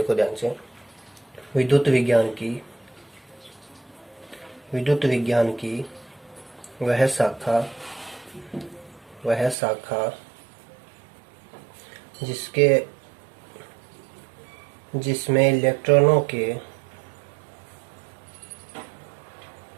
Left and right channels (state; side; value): drops out; left; at 9.6 s